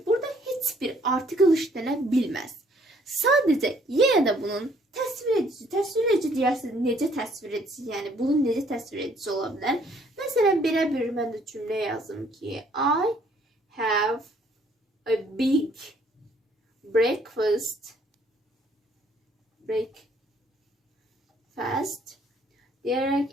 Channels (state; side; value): normal; both; correlation 0.63